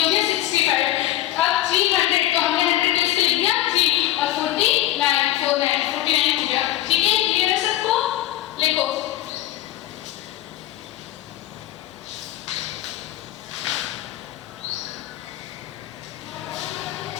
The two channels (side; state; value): right; quieter; 14.2 dB